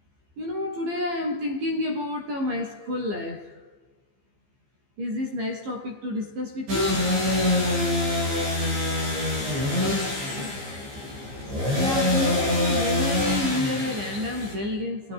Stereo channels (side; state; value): left; late; 15 ms